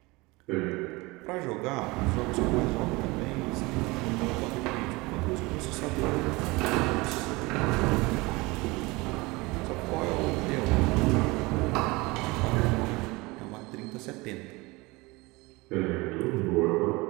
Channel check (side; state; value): left; quieter; 23.4 dB